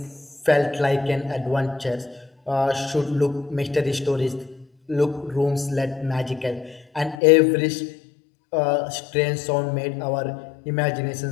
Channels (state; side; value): drops out; right; at 7.2 s